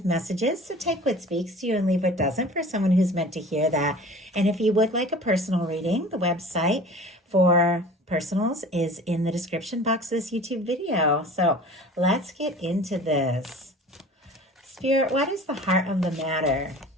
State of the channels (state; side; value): normal; both; correlation 0.43